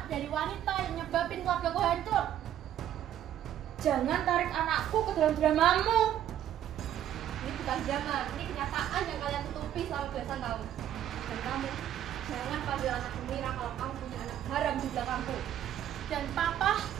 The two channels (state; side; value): quieter; left; 11.2 dB